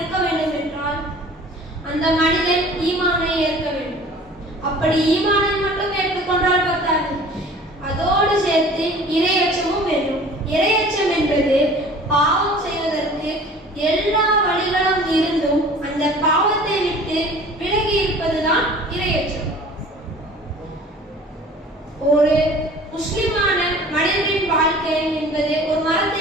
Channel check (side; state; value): both; normal; correlation 0.46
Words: வேண்டும் என்றால் அந்த மனிதன் ஈமானை ஏற்க வேண்டும். அப்படி ஈமானை மட்டும் ஏற்றுக்கொண்டால் பத்தாது, அதோடு சேர்த்து இறையச்சமும் வேண்டும். இறையச்சம் என்பது பாவம் செய்வதற்கு எல்லா வழிகளும் இருந்தும் அந்த பாவத்தை விட்டு விலகி இருப்பதுதான் இறையச்சம். ஒரு முஸ்லிமான மனிதனின் வாழ்க்கை என்பது ஒரு